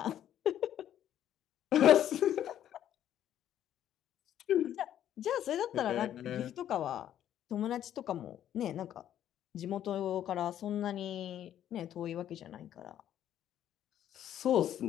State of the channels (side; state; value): right; quieter; 11.0 dB